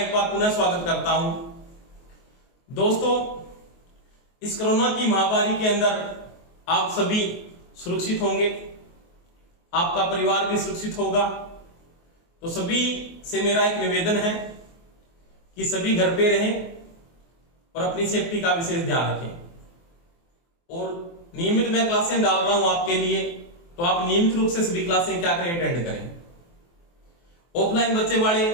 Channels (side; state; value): right; late; 23 ms